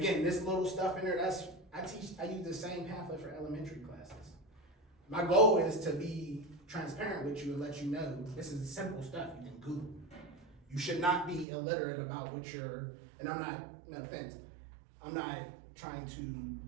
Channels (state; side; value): drops out; left; at 11.5 s